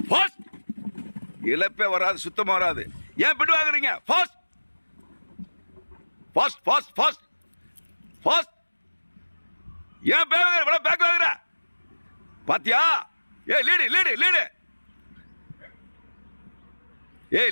fast. இழப்பே வராது, சுத்தமாக வராது. ஏன் பிட்டு வாங்குறீங்க? Fast fast fast fast fast. ஏன் பேக் வாங்குற? பாத்தியா? ஏ லீடு லீடு லீடு. ஏ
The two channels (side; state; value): both; inverted; correlation -1.00